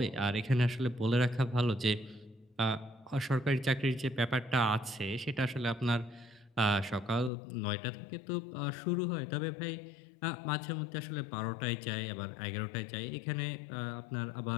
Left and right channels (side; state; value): right; drops out; at 7.3 s